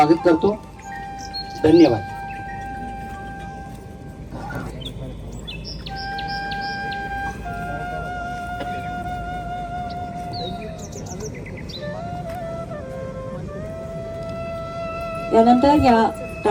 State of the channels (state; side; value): identical; both; correlation 1.00